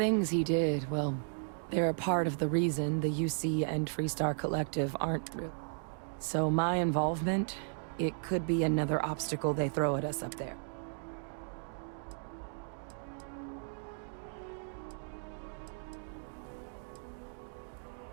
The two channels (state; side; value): silent; left; digital silence